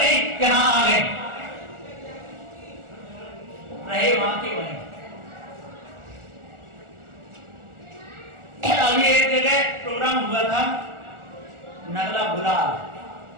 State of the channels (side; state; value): left; late; 1.4 ms